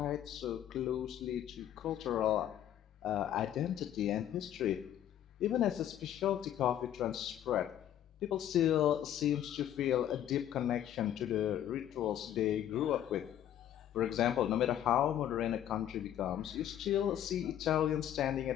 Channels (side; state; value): right; quieter; 11.0 dB